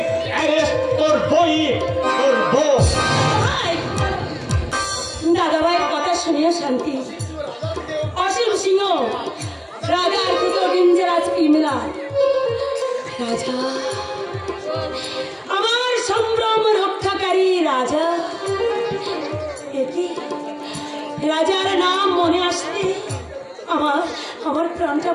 অ্যারেস্ট করবই করব। দাদা ভাইয়ের কথা শুনিয়ে শান্তি। অসীম সিংহ রাজার থেকে ডেঞ্জারাস ক্রিমিনাল। রাজা আমার সম্ভ্রম রক্ষাকারী রাজা। রাজার নাম মনে আসতে আমার প্রাণটা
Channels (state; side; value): identical; both; correlation 1.00